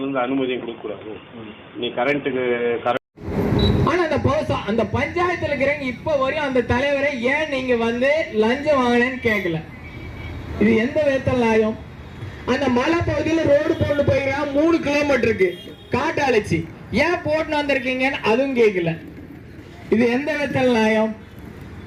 அனுமதியும் கொடுக்கக்கூடாது. நீ கரண்ட்டுக்கு ஆனா அந்த பஞ்சாயத்துல இருக்கிறவங்க இப்ப வரையும் அந்த தலைவரை ஏன் நீங்க வந்து லஞ்சம் வாங்கினேன்னு கேட்கல. இது எந்த விதத்தில் நியாயம்? அந்த மலை பகுதியில் ரோடு போட்டு போயிருக்கான் 3 கிலோமீட்டருக்கு காட்டு அழைச்சி, ஏன் போட்டு வந்திருக்கீங்கன்னு அதுவும் கேட்கல. இது எந்த விதத்தில் நியாயம்?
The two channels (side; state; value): both; identical; correlation 1.00